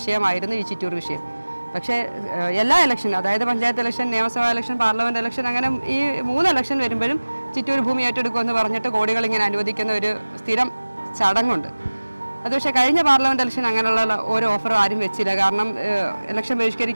ഈ ചിറ്റൂർ വിഷയം. പക്ഷേ എല്ലാ ഇലക്ഷനും, അതായത് പഞ്ചായത്ത് ഇലക്ഷൻ, നിയമസഭാ ഇലക്ഷൻ, പാർലമെൻറ്റ് ഇലക്ഷൻ, അങ്ങനെ ഈ 3 ഇലക്ഷൻ വരുമ്പോഴും ചിറ്റൂർ ഭൂമി ഏറ്റെടുക്കുമെന്ന് പറഞ്ഞിട്ട് കോടികൾ ഇങ്ങനെ അനുവദിക്കുന്ന ഒരു സ്ഥിരം ചടങ്ങുണ്ട്. അത് പക്ഷേ കഴിഞ്ഞ പാർലമെൻറ്റ് ഇലക്ഷൻ അങ്ങനെയുള്ള ഒരു ഓഫറും ആരും വെച്ചില്ല. കാരണം ഇലക്ഷൻ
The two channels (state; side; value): inverted; both; correlation -1.00